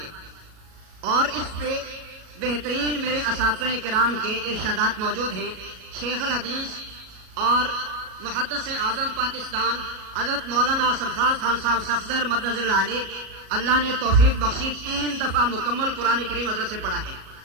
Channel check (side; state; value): left; late; 37 ms